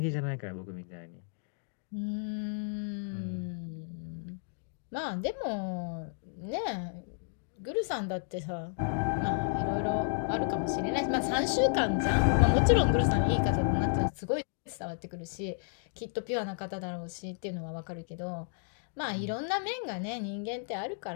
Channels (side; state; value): right; silent; digital silence